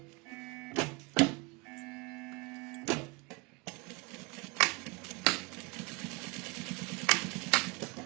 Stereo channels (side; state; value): left; quieter; 27.8 dB